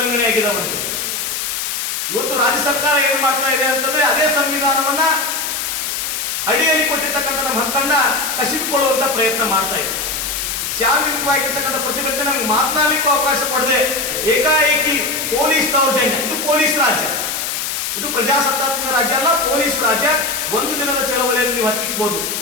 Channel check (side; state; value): left; noise; hiss, 2 dB below the sound